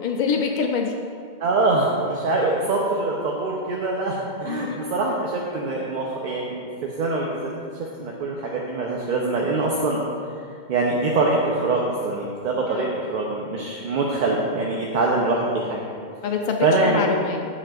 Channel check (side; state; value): left; late; 2.1 ms